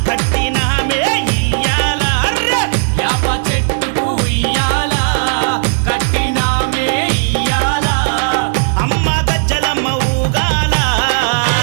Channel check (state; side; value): silent; left; digital silence